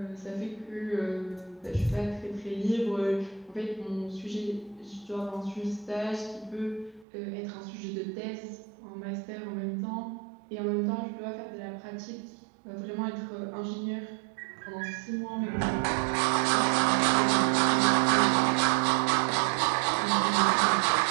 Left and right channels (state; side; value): drops out; left; at 7.1 s